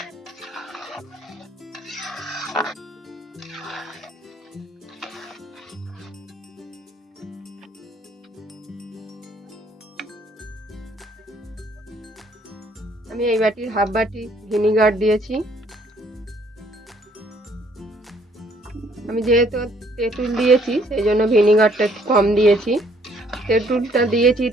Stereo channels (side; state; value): both; normal; correlation 0.64